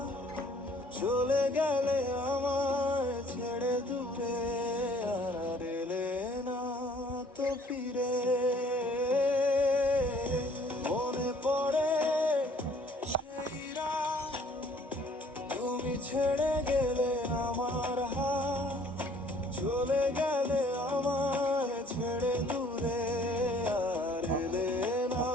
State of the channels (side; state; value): both; normal; correlation 0.58